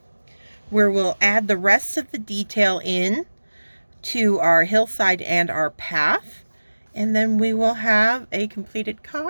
where we'll add the rest of the detail in to our hillside and our path, and then we will have a completed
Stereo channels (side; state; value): both; inverted; correlation -1.00